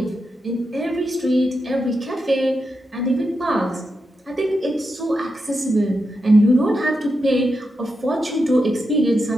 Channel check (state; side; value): normal; both; correlation 0.87